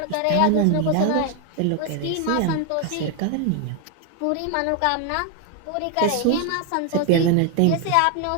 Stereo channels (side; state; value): both; different; correlation 0.01